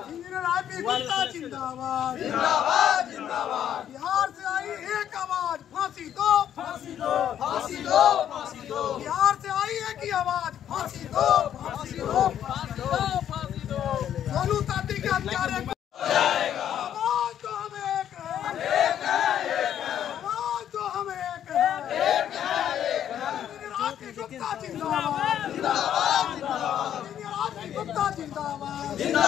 इंजीनियर हाथी गुप्ता जिंदाबाद जिंदाबाद जिंदाबाद, बिहार से आई एक आवाज फांसी दो, फांसी दो, फांसी दो, फांसी दो, बिहार से आई है कि आवाज फांसी दो, फांसी दो, फांसी दो, फांसी दो। सोनू ताती के हत्यारे को आवाज तो हम एक है, आवाज तो हम एक है। राती गुप्ता जिंदाबाद, जिंदाबाद, राती गुप्ता जिंदाबाद,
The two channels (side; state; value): right; quieter; 10.1 dB